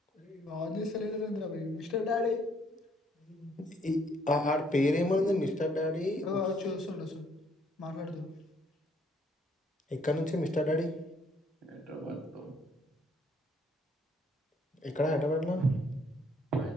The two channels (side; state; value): both; normal; correlation 0.66